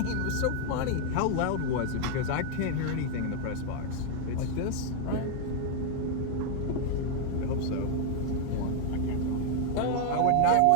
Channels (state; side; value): different; both; correlation 0.00